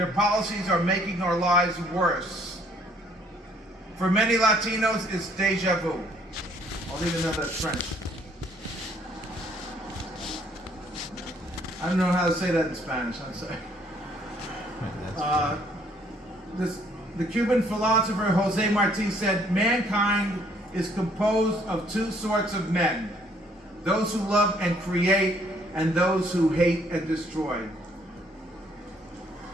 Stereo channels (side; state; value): both; normal; correlation 0.63